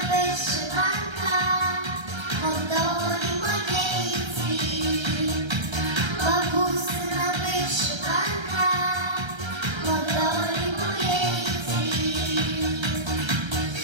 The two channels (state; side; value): late; left; 1.3 ms